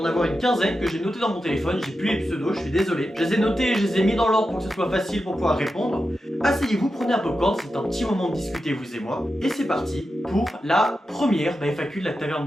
en avoir une quinzaine que j'ai notées dans mon téléphone. J'ai plus les pseudos, je suis désolé. Je les ai notés et je les ai mis dans l'ordre pour que ce soit facile pour pouvoir répondre. Asseyez-vous, prenez un popcorn, c'est un petit moment de discuter vous et moi. Et c'est parti pour la première FAQ de la Taverne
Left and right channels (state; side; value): normal; both; correlation 0.90